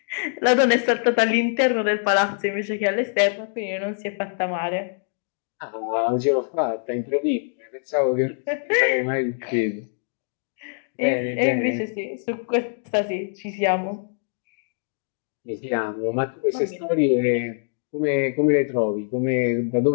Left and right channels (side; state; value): right; silent; digital silence